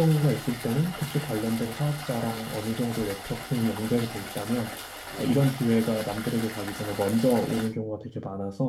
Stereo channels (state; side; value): identical; both; correlation 1.00